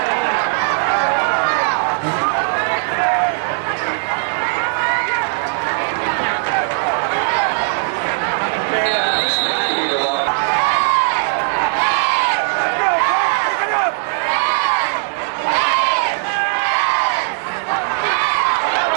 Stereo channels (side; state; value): left; silent; 56 dB below the other